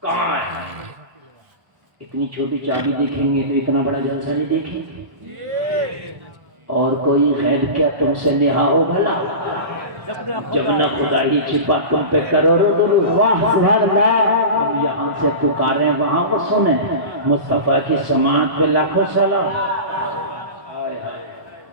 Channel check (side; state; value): left; late; 1.2 ms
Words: کہاں ہے؟ اتنی چھوٹی چابی دیکھیں گے تو اتنا بڑا جلسہ نہیں دیکھیں گے؟ اور کوئی غیب کیا تم سے نہا ہو بھلا؟ جب نہ خدا ہی چھپا تم پہ کروڑوں، ہم یہاں سے پکاریں وہاں کو سنیں، مصطفیٰ کی سماعت پہ لاکھوں سلام۔